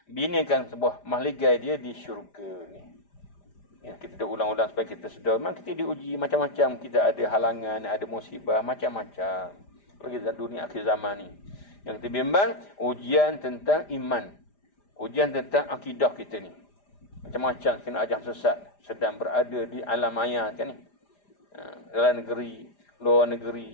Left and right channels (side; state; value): right; late; 5.0 ms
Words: binakan sebuah mahligai dia di syurga ni. Ya, kita dah ulang-ulang supaya kita sedar. Memang kita diuji macam-macam. Kita ada halangan, ada musibah, macam-macam. Lagi dalam dunia akhir zaman ni. Yang kita bimbang, ujian tentang iman. Ujian tentang akidah kita ni. Macam-macam kena ajar sesat. Sedang berada di alam maya kan ni. Dalam negeri, luar